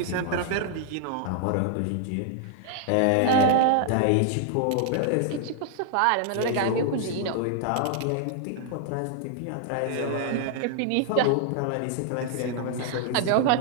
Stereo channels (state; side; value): different; both; correlation -0.01